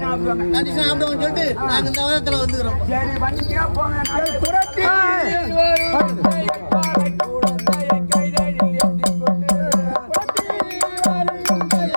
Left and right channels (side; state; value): both; inverted; correlation -1.00